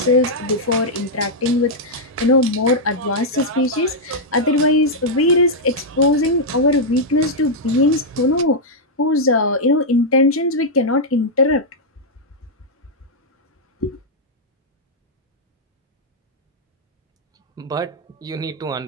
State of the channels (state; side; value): normal; both; correlation -0.05